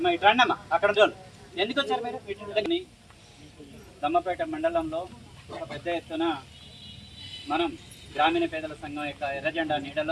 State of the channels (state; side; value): identical; both; correlation 1.00